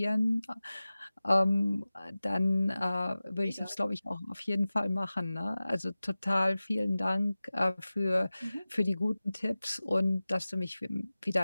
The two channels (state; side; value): inverted; both; correlation -0.97